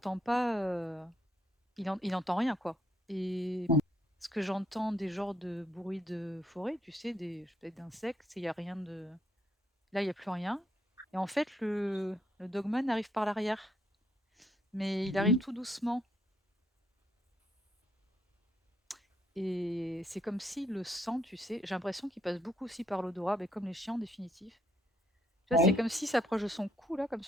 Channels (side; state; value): both; normal; correlation 0.72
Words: pas, il entend rien, quoi. Et mh. ce que j'entends des genres de bruits de forêt, tu sais, peut-être d'insectes, il y a rien de, là, il y a plus rien. Et en fait, le dogman arrive par l'arrière, mais il arrive Mmh. tout doucement. et c'est comme si le sang, tu sais, j'ai l'impression qu'il passe beaucoup aussi par l'odorat, mais comme les chiens en définitive. Tu vois, c'est Oui. comme s'il s'approche de son cou, là, comme